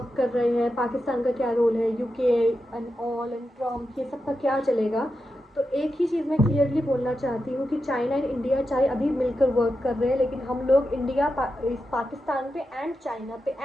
कर रहे हैं, पाकिस्तान का क्या रोल है, UK and all and Trump, ये सब का क्या चलेगा। तो एक ही चीज़ मैं क्लियरली बोलना चाहती हूँ कि चाइना एंड इंडिया चाहे अभी मिलकर वर्क कर रहे हैं, लेकिन हम लोग पाकिस्तान पे एंड चाइना पे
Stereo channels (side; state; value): both; normal; correlation 0.89